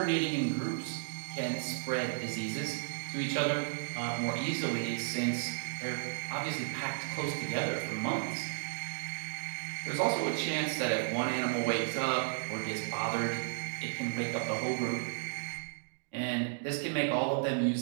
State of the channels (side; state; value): left; silent; digital silence